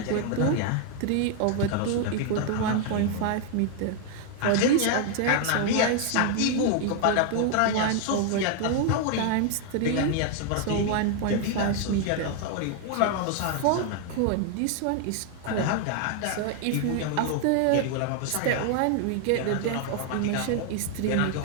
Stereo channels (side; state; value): both; different; correlation 0.00